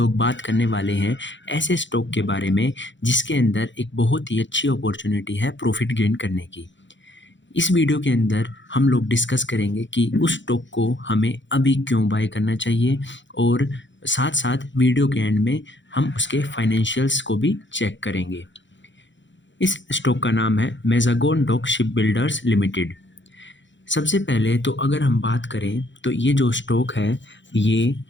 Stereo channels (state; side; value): late; right; 0.54 ms